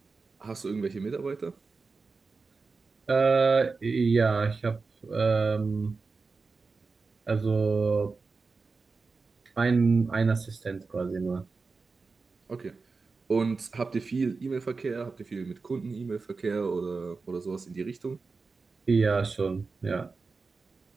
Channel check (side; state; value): left; quieter; 4.3 dB